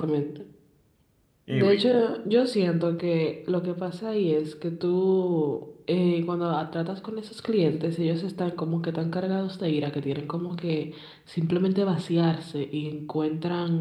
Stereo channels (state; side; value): identical; both; correlation 1.00